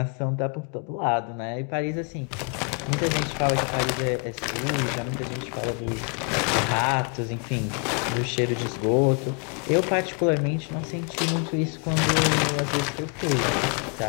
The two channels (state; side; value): quieter; right; 39.0 dB